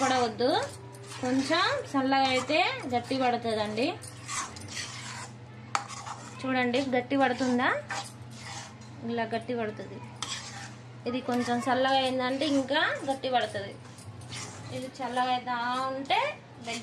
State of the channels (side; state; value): both; identical; correlation 1.00